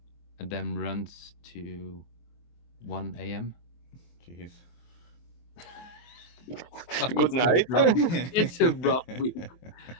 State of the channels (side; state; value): right; late; 23 ms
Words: and then runs to 1 a.m. Jeez. So Good night. it's a rough week. Dang.